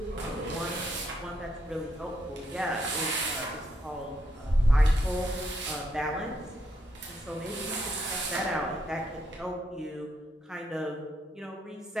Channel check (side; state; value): both; normal; correlation 0.77